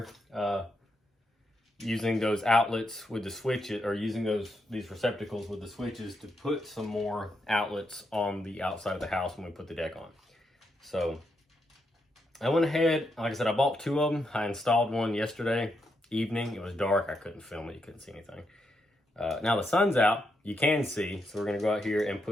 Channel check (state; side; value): normal; both; correlation 0.81